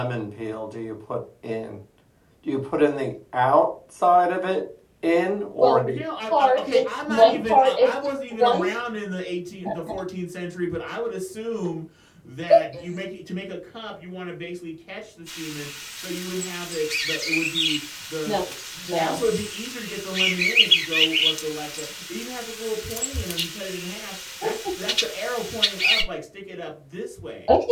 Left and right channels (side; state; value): both; identical; correlation 1.00